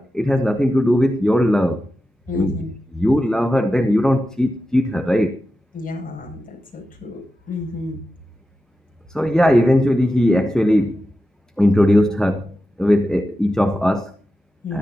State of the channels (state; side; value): normal; both; correlation 0.91